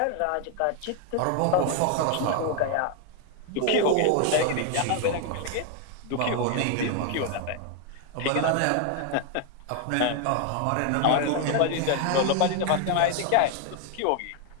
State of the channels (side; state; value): both; different; correlation 0.01